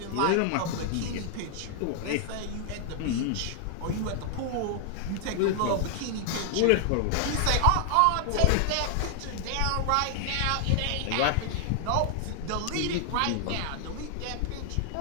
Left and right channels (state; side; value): different; both; correlation 0.00